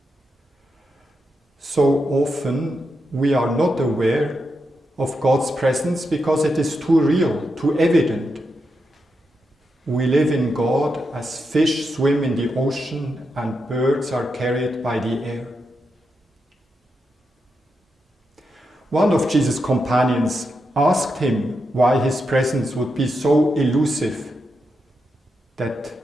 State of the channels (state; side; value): normal; both; correlation 0.86